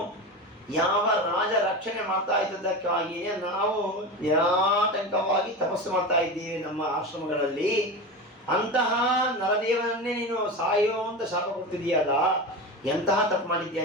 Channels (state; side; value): normal; both; correlation 0.24